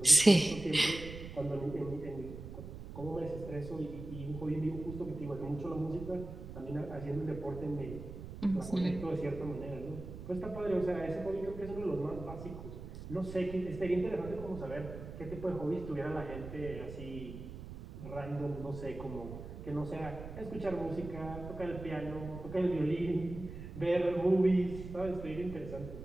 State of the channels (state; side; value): noise; right; rumble, 11 dB below the sound